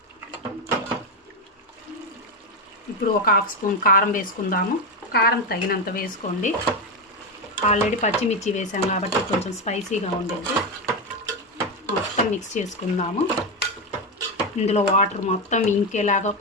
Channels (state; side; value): normal; both; correlation 0.10